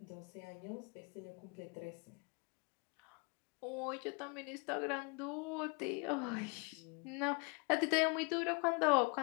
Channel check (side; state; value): right; quieter; 31.7 dB